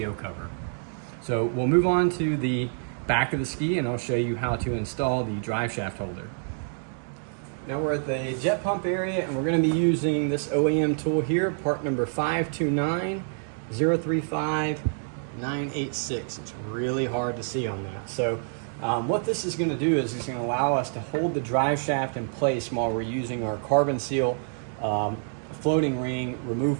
cover. So we'll move on to the back of the ski, and I'll show you how to install the drive shaft holder. Now we're at the jet pump area, and we're going to be using this OEM tool here, part number 529035-986. It's really hard to see on that. So what this is going to do is it's going to allow us to hold the drive shaft in place while we're using our carbon seal floating ring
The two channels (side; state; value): left; silent; digital silence